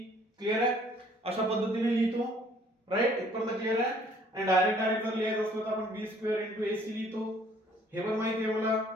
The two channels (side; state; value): both; normal; correlation 0.59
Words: क्लिअर आहे. अशा पद्धतीने लिहितो. राईट. इथपर्यंत क्लिअर आहे. आणि डायरेक्ट जर लिहायचं असलं तर आपण b² इंटू ac लिहितो. हे पण माहिती आहे मला